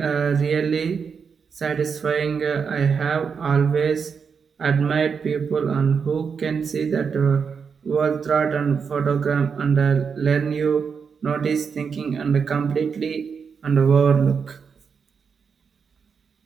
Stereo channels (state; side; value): quieter; left; 6.1 dB